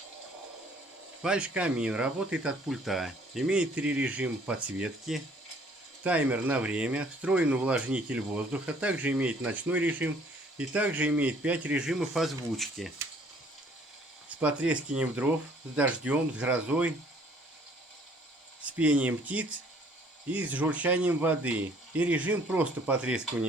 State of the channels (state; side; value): normal; both; correlation 0.59